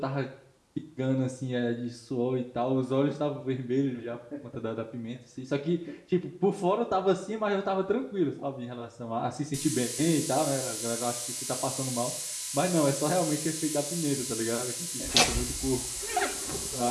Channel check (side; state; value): both; identical; correlation 1.00